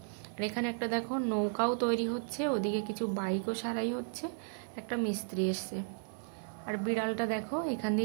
আর এখানে একটা দেখো নৌকাও তৈরি হচ্ছে, ওদিকে কিছু বাইকও সারাই হচ্ছে, একটা মিস্ত্রি এসছে। আর বিড়ালটা দেখো, এখান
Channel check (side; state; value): left; silent; digital silence